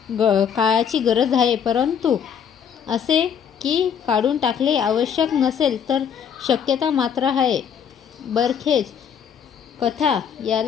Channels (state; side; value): quieter; right; 7.8 dB